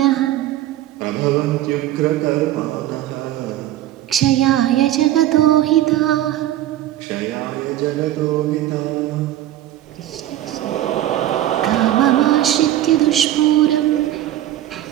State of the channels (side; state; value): left; quieter; 13.3 dB